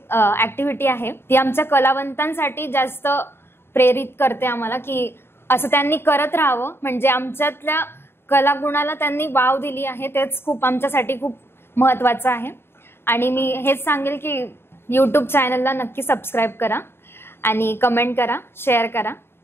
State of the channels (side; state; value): right; late; 0.11 ms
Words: ऍक्टिव्हिटी आहे ती आमच्या कलावंतांसाठी जास्त प्रेरित करते आम्हाला की असं त्यांनी करत राहावं. म्हणजे आमच्यातल्या कलागुणाला त्यांनी वाव दिली आहे, तेच खूप आमच्यासाठी खूप महत्वाचं आहे. आणि मी हेच सांगेल की यूट्यूब चॅनलला नक्की सबस्क्राईब करा आणि कमेंट करा, शेअर करा.